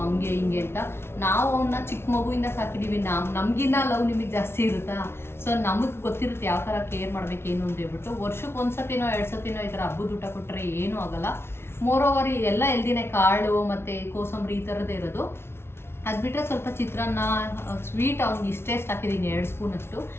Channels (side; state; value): right; late; 0.12 ms